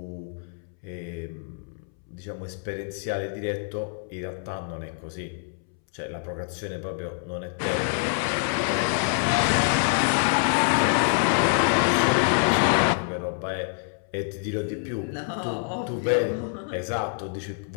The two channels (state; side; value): silent; right; 61 dB below the other